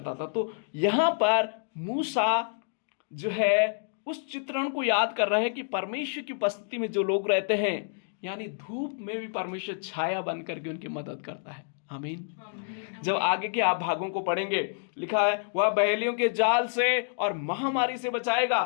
था। तो यहां पर मूसा जो है उस चित्रण को याद कर रहे हैं कि परमेश्वर की उपस्थिति में जो लोग रहते हैं, यानी धूप में भी परमेश्वर छाया बनकर के उनकी मदद करता है। आमीन। जब आगे के आप भागों को पढ़ेंगे, लिखा है वह बहेलियों के जाल से और महामारी से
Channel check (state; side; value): silent; right; digital silence